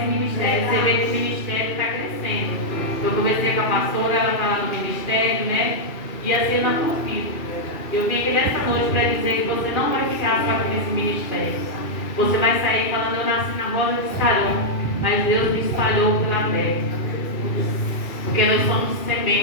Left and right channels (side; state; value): right; late; 2.5 ms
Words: ministério, você vê que o ministério está crescendo. Eu conversei com a pastora, ela está lá no ministério, né? E assim na tua vida. Eu vim aqui nessa noite para dizer que você não vai ficar só aqui nesse ministério. Você vai sair falando, eu nasci na roda de Sarão, mas Deus me espalhou pela terra. Porque nós somos